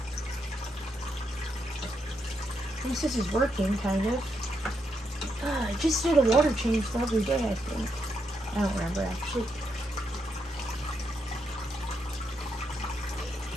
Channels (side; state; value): both; normal; correlation 0.81